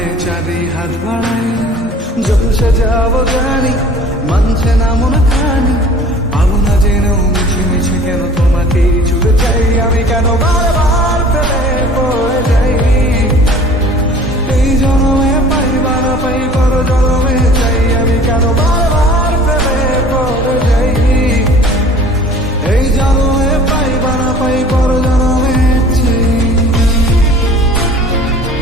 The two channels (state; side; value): normal; both; correlation 0.48